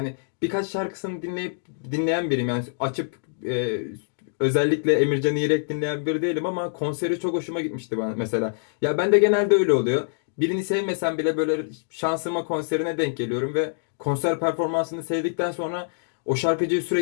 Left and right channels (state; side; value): silent; right; digital silence